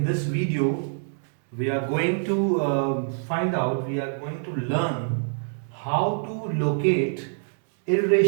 this video we are going to we are going to learn how to locate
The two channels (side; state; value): left; silent; 61 dB below the other